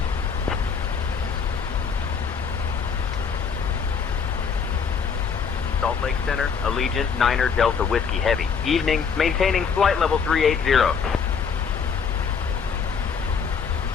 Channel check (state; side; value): quieter; right; 6.2 dB